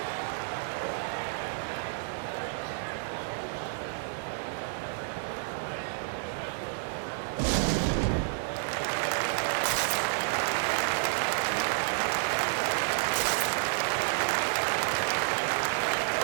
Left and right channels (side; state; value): left; silent; digital silence